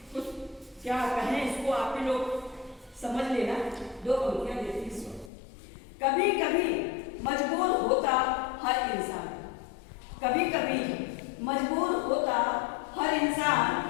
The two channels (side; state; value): right; drops out; at 5.3 s